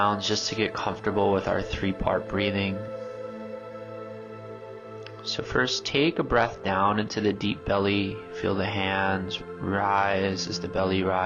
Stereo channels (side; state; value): both; identical; correlation 1.00